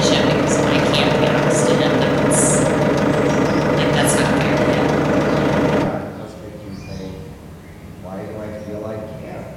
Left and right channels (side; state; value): both; identical; correlation 1.00